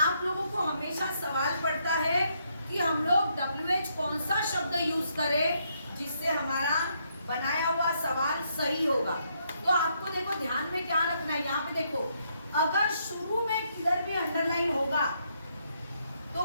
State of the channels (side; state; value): both; inverted; correlation -0.75